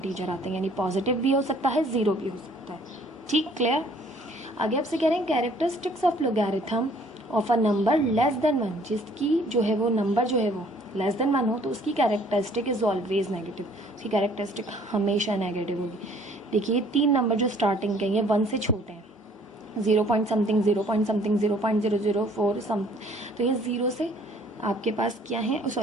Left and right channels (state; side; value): normal; both; correlation 0.58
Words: आते हैं, यानी पॉजिटिव भी हो सकता है, ज़ीरो भी हो सकता है। ठीक, क्लियर। आगे आपसे कह रहे हैं characteristics of logarithm of a number less than 1, जिसकी जो है वो नंबर जो है वो लेस देन 1 हो तो उसकी कैरेक्टरिस्टिक इज ऑलवेज नेगेटिव, उसकी कैरेक्टरिस्टिक हमेशा नेगेटिव होगी। देखिए 3 नंबर जो स्टार्टिंग के ये 1 से छोटे हैं, 0 पॉइंट समथिंग 0 पॉइंट समथिंग 0.004 सम, तो ये 0 से आपके पास क्या है,